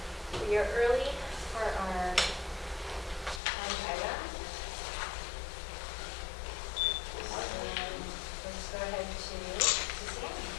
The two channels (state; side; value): drops out; right; at 3.4 s